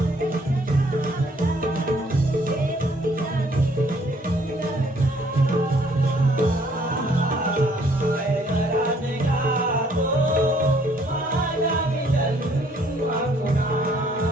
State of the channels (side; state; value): both; normal; correlation 0.63